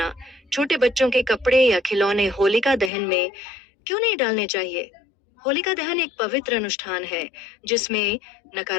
छोटे बच्चों के कपड़े या खिलौने होलिका दहन में क्यों नहीं डालने चाहिए? होलिका दहन एक पवित्र अनुष्ठान है जिसमें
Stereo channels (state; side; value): drops out; right; at 2.9 s